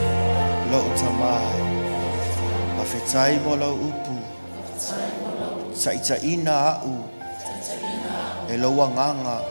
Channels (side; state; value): both; inverted; correlation -1.00